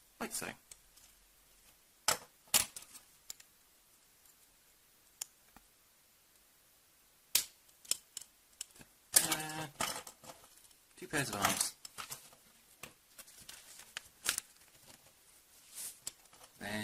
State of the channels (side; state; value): both; identical; correlation 1.00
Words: like so. two pairs of arms.